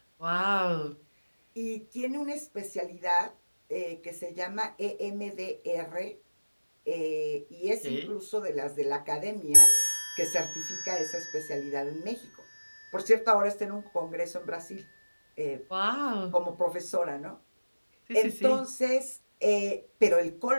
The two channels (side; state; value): both; inverted; correlation -1.00